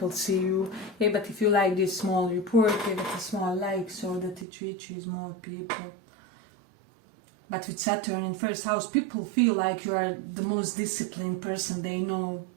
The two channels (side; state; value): left; drops out; at 4.5 s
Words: see you. Hey, but if you like this small report, give it a small like so that it reaches more people. But with Saturn in first house, people feel like you are the most disciplined person they know